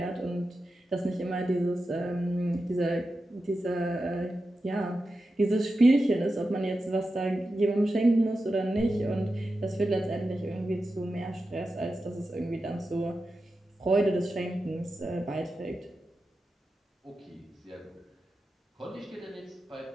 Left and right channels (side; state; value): both; normal; correlation 0.91